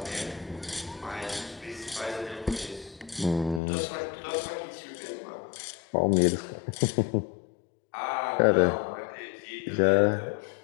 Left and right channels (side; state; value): right; drops out; at 3.6 s